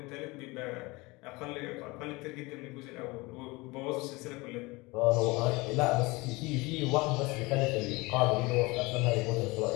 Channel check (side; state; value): right; quieter; 23.9 dB